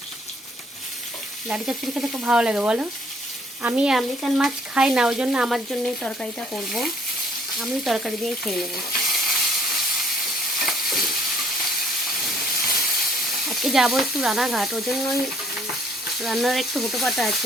ডাঁটি চচ্চড়ি খেতে খুব ভালো লাগে বলো। আমি আমেরিকান মাছ খাই না, ওই জন্য আমার জন্য এই তরকারিটা করব। আমি তরকারি দিয়ে খেয়ে নেব। আজকে যাবো একটু রানাঘাট, ওই জন্যই রান্নার একটু হুটোপাটা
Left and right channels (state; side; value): normal; both; correlation 0.62